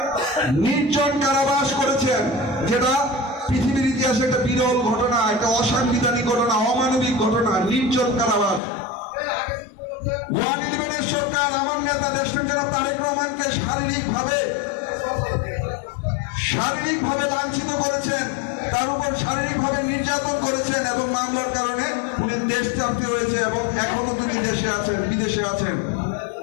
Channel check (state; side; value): drops out; right; at 8.6 s